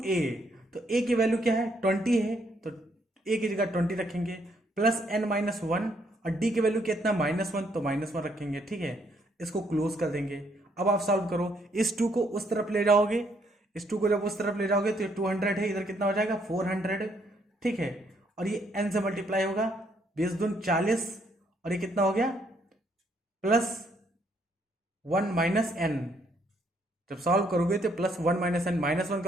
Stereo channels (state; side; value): normal; both; correlation 0.71